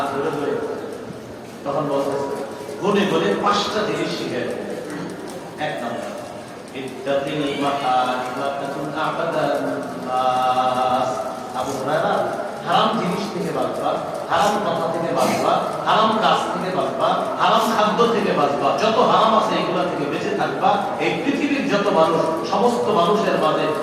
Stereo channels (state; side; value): identical; both; correlation 1.00